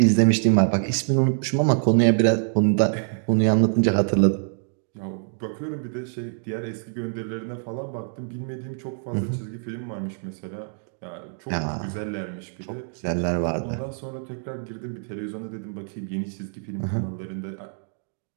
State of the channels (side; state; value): left; silent; digital silence